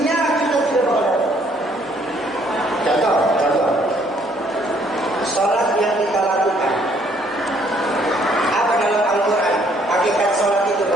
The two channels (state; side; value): normal; both; correlation 0.65